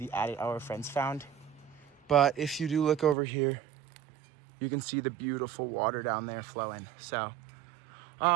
adit our friends found. But if you do look over here, you can see the beautiful water down there flowing. So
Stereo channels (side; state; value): left; drops out; at 3.2 s